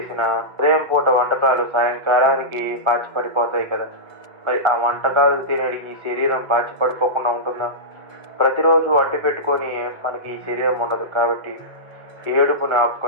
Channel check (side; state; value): left; late; 1.8 ms